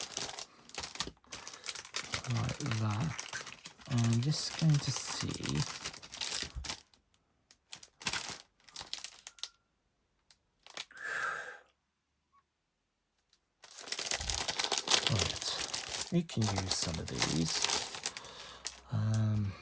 like that. And I'm just going to see right, we can use some of these.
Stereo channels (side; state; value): both; identical; correlation 1.00